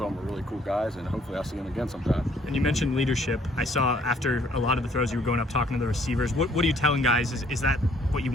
them are really cool guys, and hopefully I'll see them again sometime. And you mentioned leadership. I saw after a lot of the throws you were going up talking to the receivers. What are you telling guys? Is that what you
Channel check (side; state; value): both; normal; correlation 0.63